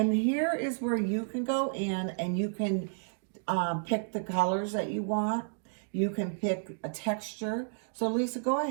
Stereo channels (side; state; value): left; silent; digital silence